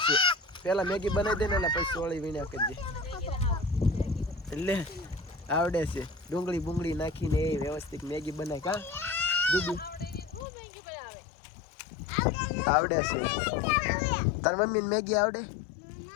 છે. પેલા મેગી બનાવી દે ને એટલે પછી સોળી વીણ્યા કરજે. એટલે આવડે છે ડુંગળી બુંગળી નાખીને એ વ્યવસ્થિત મેગી બનાય. કા દીદી આવડે છે તાર મમ્મીને મેગી આવડે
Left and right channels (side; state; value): right; drops out; at 10.5 s